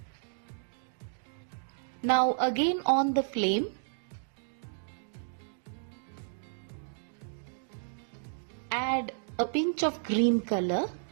Now again on the flame. Add a pinch of green color.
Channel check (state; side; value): silent; left; digital silence